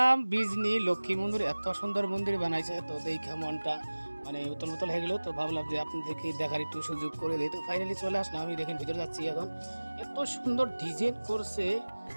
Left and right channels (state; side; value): inverted; both; correlation -1.00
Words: বিজনি লক্ষ্মী মন্দির। এত সুন্দর মন্দির বানাইছে, তো দেখে মনটা মানে উতল উতল হয়ে গেল। তো ভাবলাম যে আপনাদেরকে দেখার একটু সুযোগ করে দিই। তো ফাইনালি চলে আসলাম, আমি দেখেন ভিতরে যাচ্ছি এখন। এত সুন্দর ডিজাইন করছে,